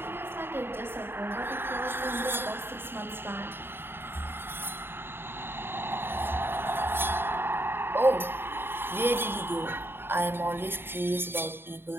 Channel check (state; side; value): late; left; 0.11 ms